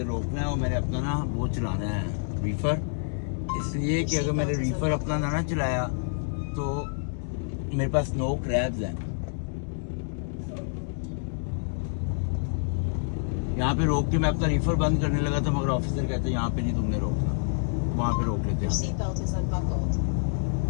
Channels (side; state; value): right; silent; digital silence